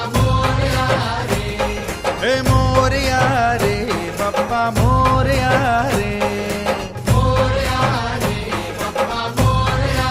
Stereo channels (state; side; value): identical; both; correlation 1.00